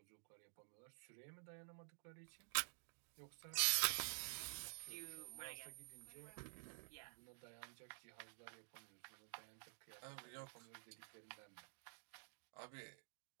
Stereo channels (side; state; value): left; silent; digital silence